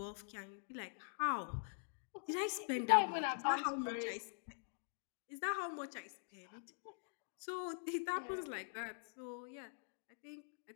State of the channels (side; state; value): right; silent; digital silence